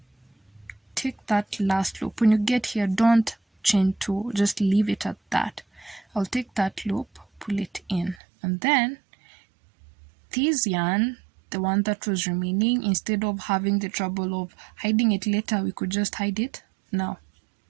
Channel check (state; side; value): drops out; left; at 8.2 s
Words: take that last loop. When you get here, don't chain two, just leave it at that. I'll take that loop, pull it in, and then this yarn, the one that was remaining, instead of having the trouble of hiding it later, we could just hide it now.